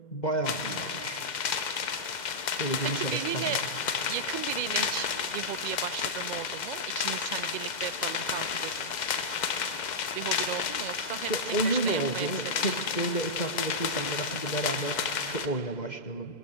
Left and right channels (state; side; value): late; right; 2.1 ms